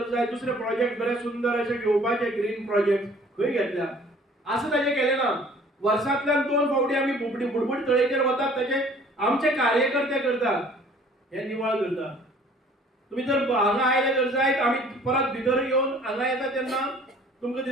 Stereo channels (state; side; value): normal; both; correlation 0.53